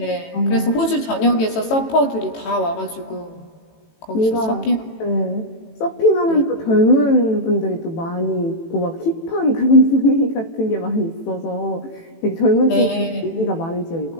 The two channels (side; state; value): right; late; 18 ms